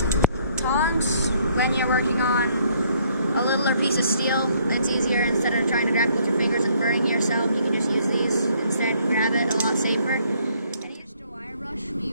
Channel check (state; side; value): inverted; both; correlation -0.66